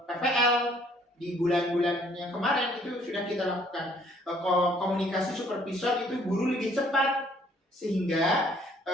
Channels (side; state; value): both; normal; correlation 0.61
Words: PPL di bulan-bulan yang kemarin itu sudah kita lakukan. Komunikasi supervisor itu guru lebih cepat sehingga